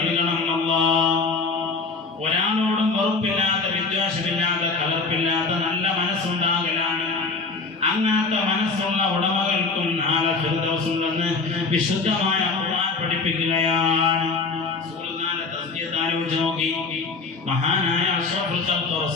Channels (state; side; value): quieter; right; 4.2 dB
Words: അല്ലാഹ്. ഒരാളോടും വെറുപ്പില്ലാത്ത, വിദ്വേഷമില്ലാത്ത, കലർപ്പില്ലാത്ത നല്ല മനസ്സുണ്ടാകലാണ്. അങ്ങനത്തെ മനസ്സുള്ള ഉടമകൾക്കും നാളെ ഫിർദൗസുണ്ടെന്ന് വിശുദ്ധമായ ഖുർആൻ പഠിപ്പിക്കുകയാണ്. റസൂലുള്ളാഹിന്റെ തസ്കിയത്ത് ആലോചിച്ച് നോക്കി. മഹാനായ അഷ്റഫുൽ ഖൽഖ്